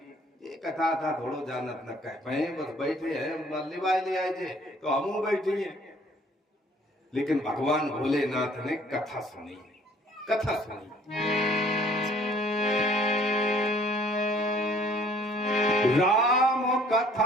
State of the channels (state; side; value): normal; both; correlation 0.58